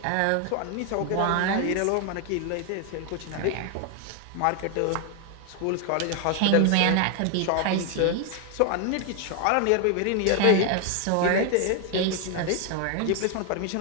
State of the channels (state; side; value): different; both; correlation 0.01